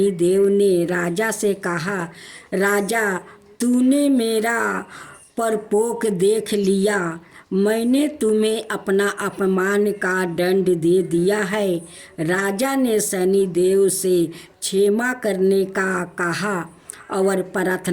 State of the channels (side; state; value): both; identical; correlation 1.00